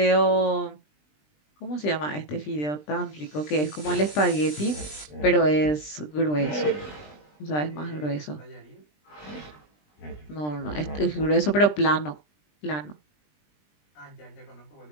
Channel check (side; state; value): right; late; 20 ms